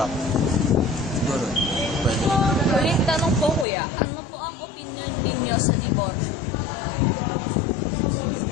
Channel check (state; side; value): drops out; right; at 3.7 s